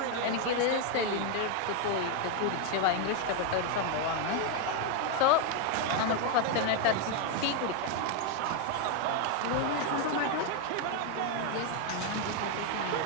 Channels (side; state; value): both; different; correlation 0.01